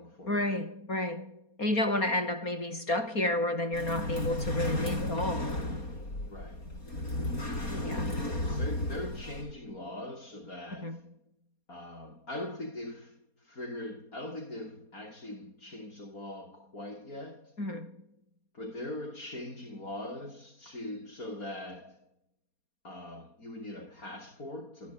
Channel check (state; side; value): late; right; 4.3 ms